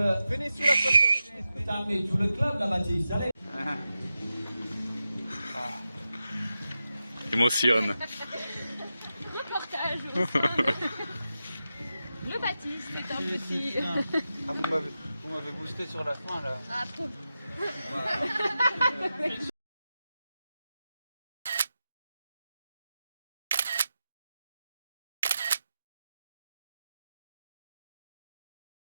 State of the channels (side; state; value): both; inverted; correlation -0.91